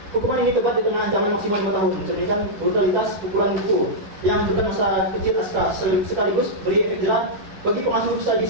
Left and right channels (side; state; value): left; late; 11 ms